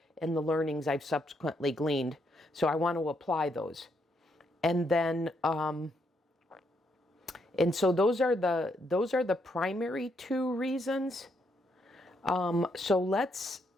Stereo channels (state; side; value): normal; both; correlation 0.76